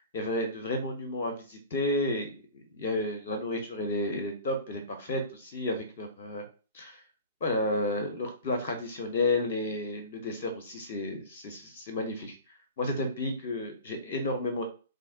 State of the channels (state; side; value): inverted; both; correlation -0.36